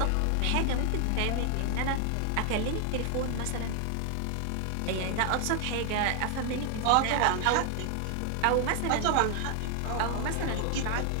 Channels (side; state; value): both; different; correlation 0.00